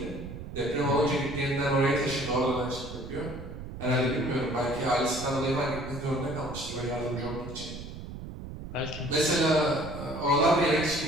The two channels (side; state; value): right; noise; rumble, 10 dB below the sound